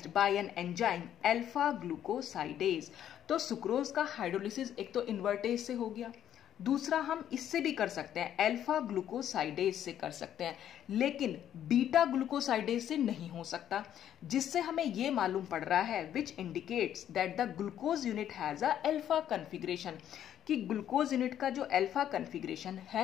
bye an enzyme alpha glucosidase. तो सुक्रोज का हाइड्रोलिसिस एक तो इन्वर्टेज से हो गया, दूसरा हम इससे भी कर सकते हैं, अल्फा ग्लूकोसाइडेज से कर सकते हैं, लेकिन बीटा ग्लूकोसाइडेज से नहीं हो सकता, जिससे हमें यह मालूम पड़ रहा है which indicates that the glucose unit has a alpha configuration, कि ग्लूकोज यूनिट का जो अल्फा कन्फिग्रेशन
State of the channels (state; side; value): quieter; right; 10.5 dB